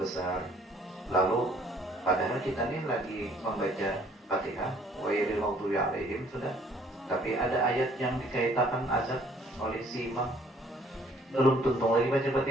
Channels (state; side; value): normal; both; correlation 0.60